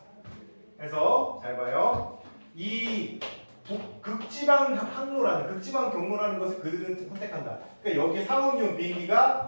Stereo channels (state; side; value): inverted; both; correlation -1.00